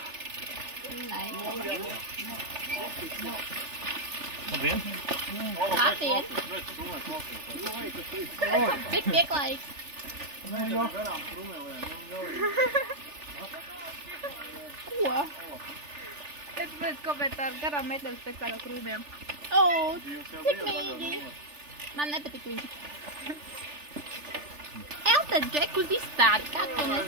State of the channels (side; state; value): left; late; 3.4 ms